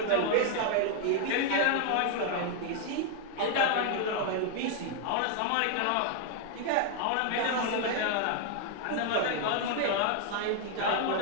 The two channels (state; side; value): different; both; correlation 0.00